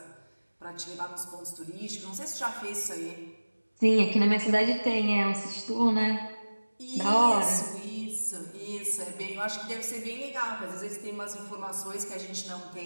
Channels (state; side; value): inverted; both; correlation -1.00